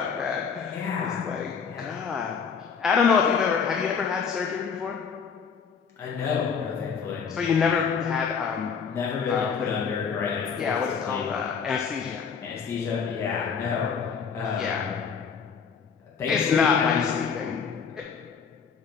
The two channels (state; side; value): quieter; right; 6.2 dB